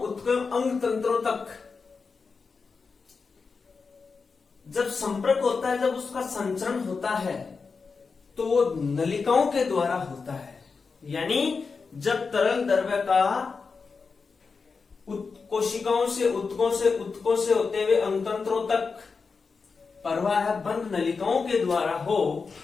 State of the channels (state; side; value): quieter; right; 4.9 dB